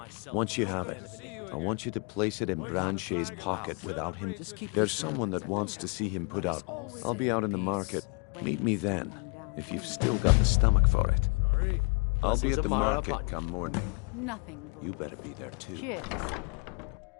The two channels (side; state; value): right; quieter; 33.6 dB